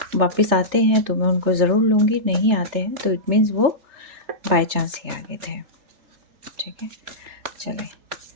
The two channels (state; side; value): late; left; 3.3 ms